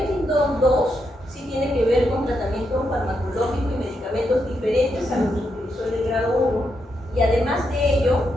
2 sí tiene que ver con tratamiento farmacológico y medicamentos diferentes a los que utilizó el de grado 1, y además de ello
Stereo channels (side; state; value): both; normal; correlation 0.82